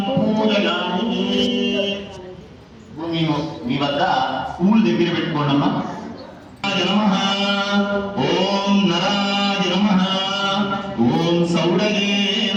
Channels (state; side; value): identical; both; correlation 1.00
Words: పూజయామి. మీ వద్ద పూలు దగ్గర పెట్టుకోండమ్మా. నమః ఓం నరాయ నమః. ఓం సౌడగే